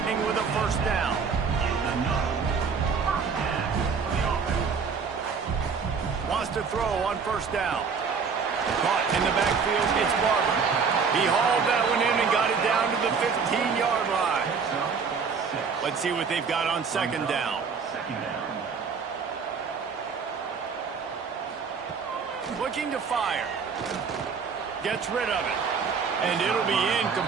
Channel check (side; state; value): left; quieter; 5.7 dB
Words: with a 1st down. across to throw on first down. Caught in the backfield, it's Barber. He hauled that one in and got it down to the 15-yard line. Let's see what they've got on second down. Looking to fire. Gets rid of it. And it'll be